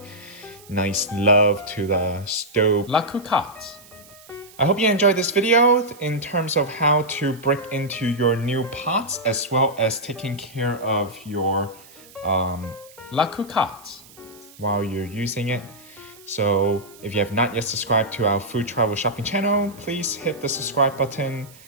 nice love to the Staub La Cocotte. I hope you enjoyed this video in terms of how to break into your new pots as well as taking care of your La Cocotte. while you're using it. So if you have not yet subscribed to our food travel shopping channel, please hit the subscribe button.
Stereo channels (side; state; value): right; noise; hiss, 23 dB below the sound